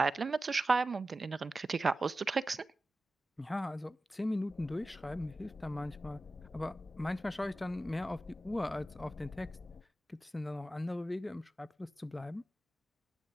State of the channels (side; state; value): both; normal; correlation 0.94